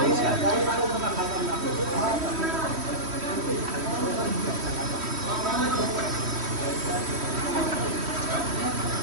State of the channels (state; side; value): late; left; 3.1 ms